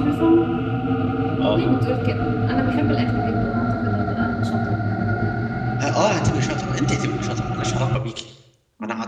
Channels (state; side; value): identical; both; correlation 1.00